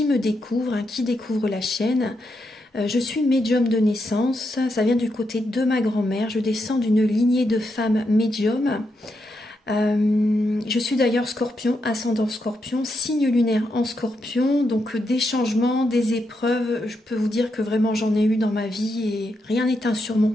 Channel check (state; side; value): normal; both; correlation 0.83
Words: me découvrent, qui découvrent la chaîne. Je suis médium de naissance, ça vient du côté de ma grand-mère. Je descends d'une lignée de femmes médiums. Je suis d'ailleurs scorpion, ascendant scorpion, signe lunaire en scorpion. Donc des changements, des épreuves, je peux vous dire que vraiment j'en ai eu dans ma vie et rien n'est